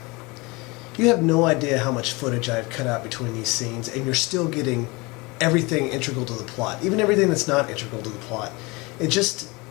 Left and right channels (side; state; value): right; quieter; 25.5 dB